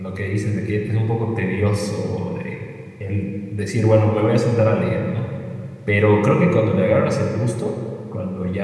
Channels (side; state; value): both; identical; correlation 1.00